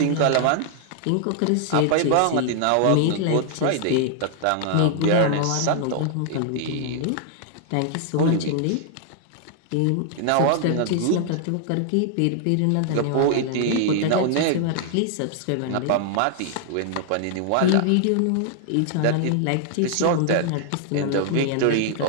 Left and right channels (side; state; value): both; different; correlation 0.00